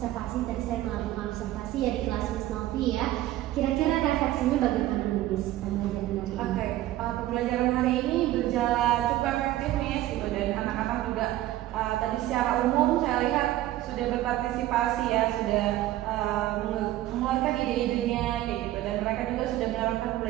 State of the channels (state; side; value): quieter; left; 14.9 dB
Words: tadi saya melakukan observasi ya di kelas Miss Novi ya. Kira-kira refleksinya bagaimana nih, Miss, pembelajaran hari ini? Oke, pembelajaran hari ini berjalan cukup efektif, Miss, gitu, dan anak-anak juga tadi secara umum saya lihat sudah berpartisipasi ya, sudah mengeluarkan ide-idenya kayak gitu, dan mereka juga sudah menerapkan